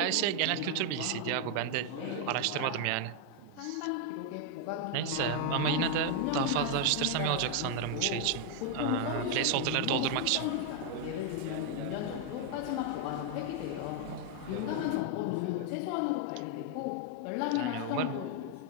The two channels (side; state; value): both; different; correlation 0.00